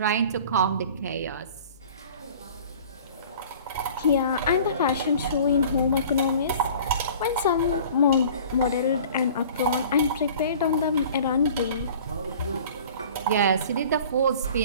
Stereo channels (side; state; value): both; inverted; correlation -0.46